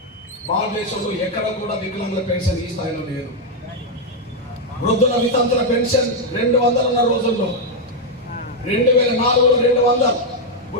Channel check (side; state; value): both; normal; correlation 0.01